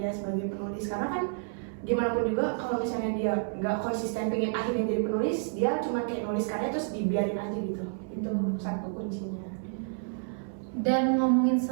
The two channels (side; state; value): left; silent; 56 dB below the other